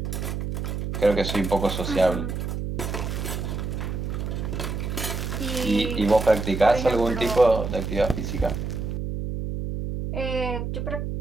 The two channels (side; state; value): right; noise; hum, 3 dB below the sound